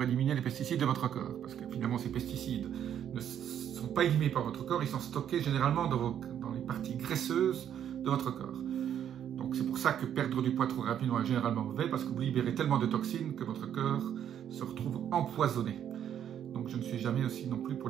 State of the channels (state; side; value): quieter; left; 9.7 dB